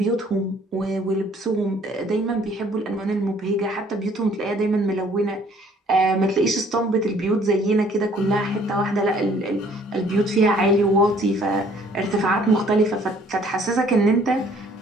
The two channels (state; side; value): normal; both; correlation 0.59